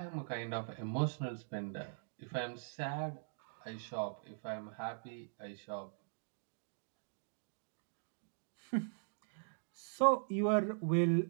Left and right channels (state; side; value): silent; left; digital silence